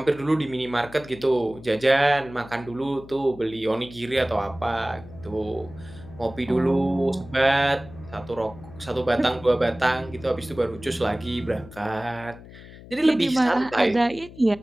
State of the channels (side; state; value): left; noise; hum, 18 dB below the sound